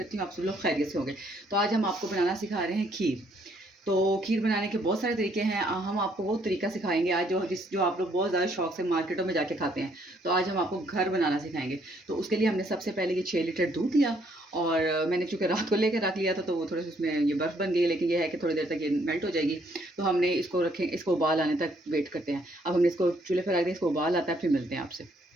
हूँ आप सब लोग खैरियत से होंगे। तो आज हम आपको बनाना सिखा रहे हैं खीर। तो खीर बनाने के बहुत सारे तरीके हैं। हम आपको वो तरीका सिखाएंगे आज जो आप लोग बहुत ज़्यादा शौक से मार्केटों में जाके खाते हैं। तो आज हम आपको घर बनाना सिखाएंगे। तो उसके लिए हमने सबसे पहले ये 6 लीटर दूध लिया और मैंने चूँकि रात को लेकर रख लिया था तो वो थोड़े से उसमें ये बर्फ़ बन गई, लेकिन ये है कि थोड़ी देर तक ये मेल्ट हो जाएगी। तो हमने इसको रखें, इसको उबाल आने तक वेट करते हैं। अब हमने इसको चूल्हे पर रख दिया, इसको उबाल आता है, फिर मिलते हैं आपसे।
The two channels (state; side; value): normal; both; correlation 0.68